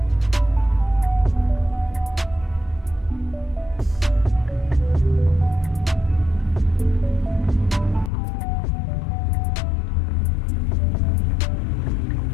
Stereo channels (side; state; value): right; drops out; at 8.1 s